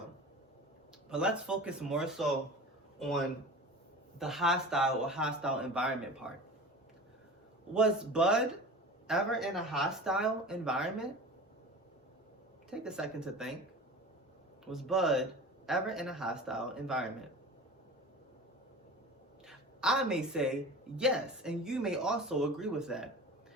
But let's focus more so on the hostile or hostile environment part. Was Bud ever in a hostile environment? Take a second to think. Was Bud ever in a hostile environment? I may say yes, and you may also agree with that.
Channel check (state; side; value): normal; both; correlation 0.36